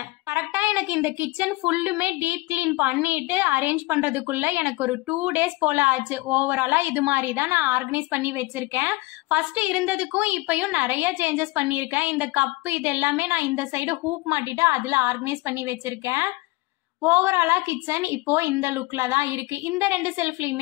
கரெக்டா எனக்கு இந்த கிச்சன் ஃபுல்லுமே டீப் கிளீன் பண்ணிட்டு அரேஞ்ச் பண்றதுக்குள்ள எனக்கு ஒரு 2 டேஸ் போல ஆச்சு. ஓவராலா இது மாதிரி தான் நான் ஆர்கனைஸ் பண்ணி வச்சிருக்கேன். ஃபர்ஸ்ட் இருந்ததுக்கும் இப்பயும் நிறைய சேஞ்சஸ் பண்ணியிருக்கேன். இந்த கப்பு இது எல்லாமே நான் இந்த சைடு ஹூப் மாட்டிட்டு அதுல ஆர்கனைஸ் பண்ணி வச்சிருக்கேன். ஓவராலா கிச்சன் இப்போ இந்த லுக்ல தான் இருக்கு. இந்த 2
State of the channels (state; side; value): quieter; right; 21.6 dB